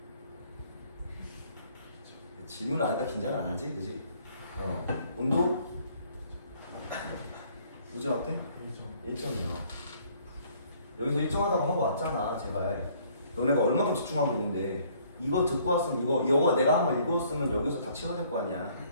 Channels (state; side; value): inverted; both; correlation -0.61